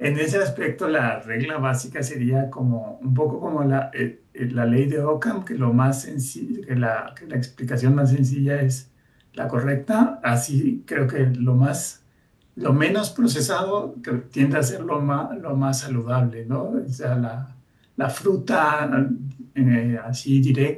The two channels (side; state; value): both; identical; correlation 1.00